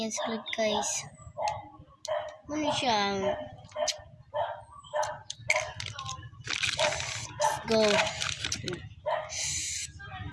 sulod guys. Mana siya. Let's go.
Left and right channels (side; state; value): both; identical; correlation 1.00